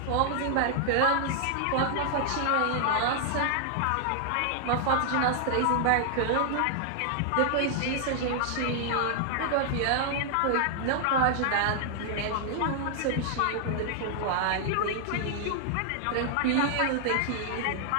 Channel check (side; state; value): both; different; correlation -0.01